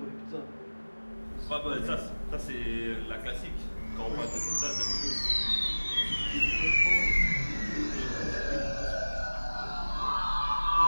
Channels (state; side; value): inverted; both; correlation -1.00